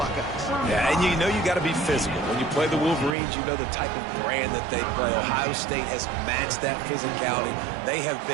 Yeah, and you got to be physical. When you play the Wolverines, you know the type of brand that they play. Ohio State has matched that physicality. They have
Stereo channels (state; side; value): drops out; left; at 3.2 s